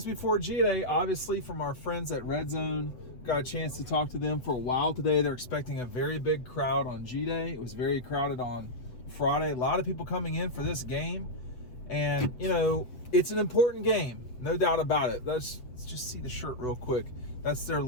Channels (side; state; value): right; late; 8.0 ms